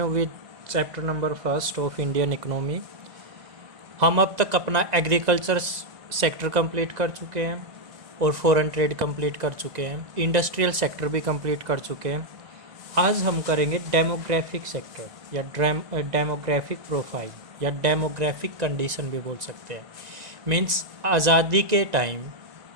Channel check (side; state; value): left; late; 1.9 ms